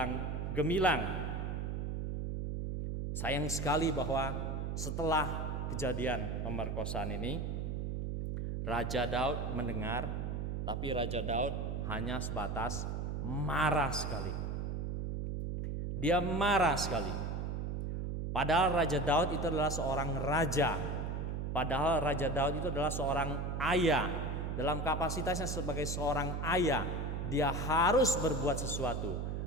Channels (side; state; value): right; noise; hum, 2 dB below the sound